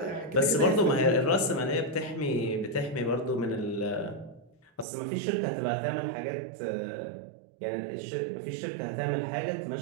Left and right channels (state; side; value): drops out; left; at 4.9 s